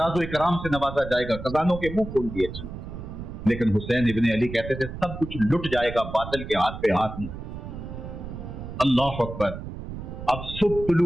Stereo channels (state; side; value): noise; right; rumble, 9 dB below the sound